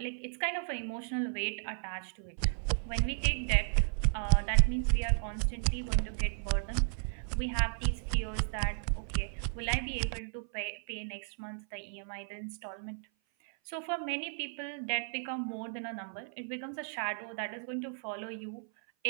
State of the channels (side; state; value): left; silent; 55 dB below the other